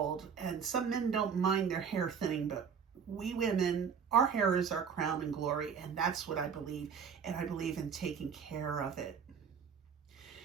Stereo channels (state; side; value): quieter; left; 6.8 dB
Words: and some men don't mind their hair thinning, but we women, our hair is our crown and glory, and that's what I believe, and I believe in taking care of it.